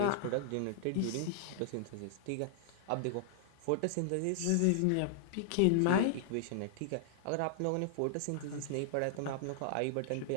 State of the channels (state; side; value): different; both; correlation -0.01